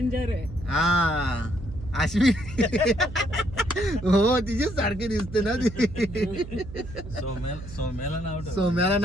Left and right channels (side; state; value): right; noise; hum, 13 dB below the sound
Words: आहे. हा अश्विनी हो तिचेच सारखे दिसते ना ती. सोम्याला